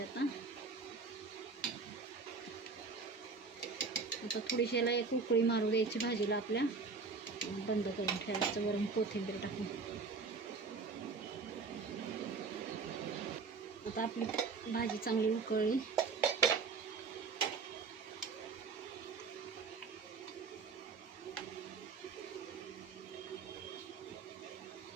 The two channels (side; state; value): left; quieter; 4.6 dB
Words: आता थोडीशी याला एक उकळी मारू द्यायची भाजीला आपल्या. बंद करून ठेवायचं, वरून कोथिंबीर टाकून. आता आपली भाजी चांगली उकळली.